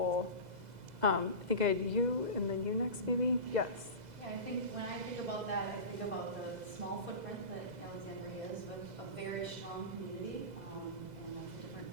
I think I had you and then you next, maybe? Yes. Yeah, I think when I think about that, I think about the small footprint that Alexandria is with a very strong community, and lots of different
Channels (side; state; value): left; late; 2.0 ms